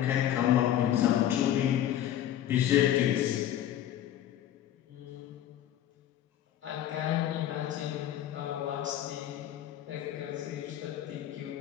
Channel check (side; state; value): right; quieter; 11.7 dB